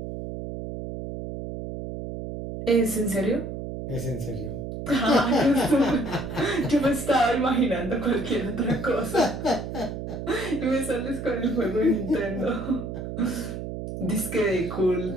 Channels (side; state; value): right; noise; hum, 7 dB below the sound